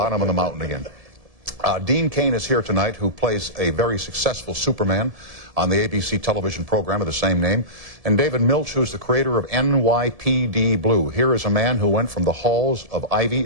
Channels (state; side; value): late; left; 1.7 ms